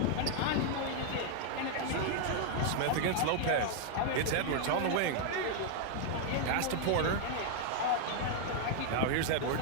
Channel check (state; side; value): different; both; correlation 0.00